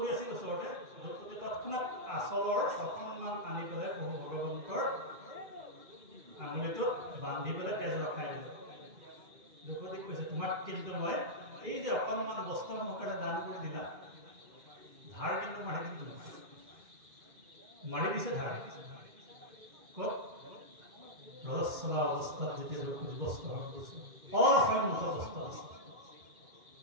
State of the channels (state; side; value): late; left; 2.2 ms